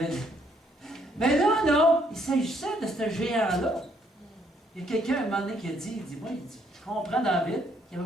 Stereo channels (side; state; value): both; normal; correlation 0.69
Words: Mais là, non, il s'agissait de ce géant-là. Il y a quelqu'un, à un moment donné, qui a dit, je comprends David, qui